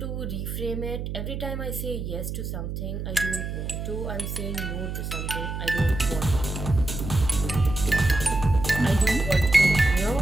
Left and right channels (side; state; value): right; noise; hum, 5 dB below the sound